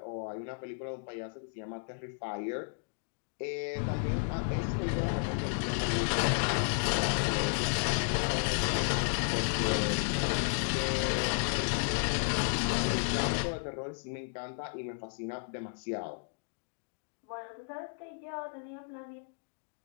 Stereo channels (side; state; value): right; silent; digital silence